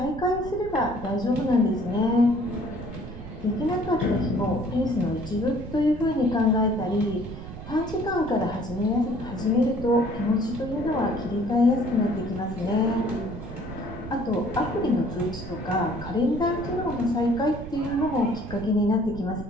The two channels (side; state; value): right; noise; rumble, 11 dB below the sound